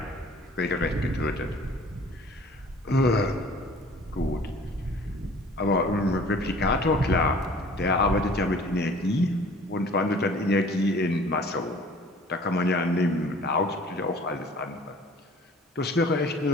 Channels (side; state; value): both; normal; correlation 0.49